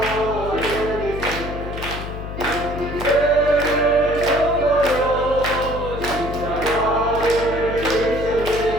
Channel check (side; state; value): left; noise; hum, 8 dB below the sound